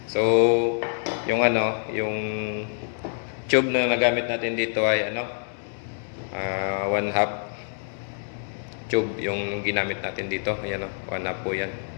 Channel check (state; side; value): silent; right; 61 dB below the other